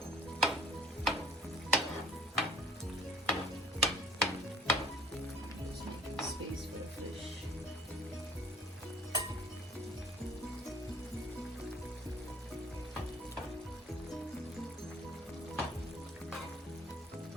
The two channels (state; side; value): normal; both; correlation 0.54